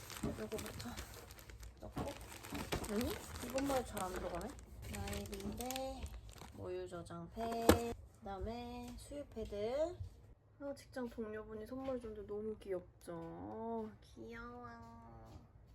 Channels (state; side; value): identical; both; correlation 1.00